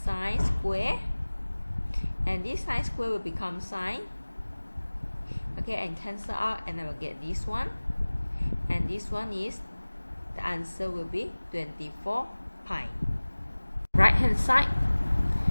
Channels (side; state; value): both; inverted; correlation -1.00